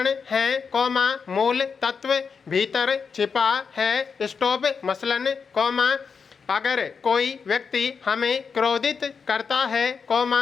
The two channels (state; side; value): quieter; right; 5.7 dB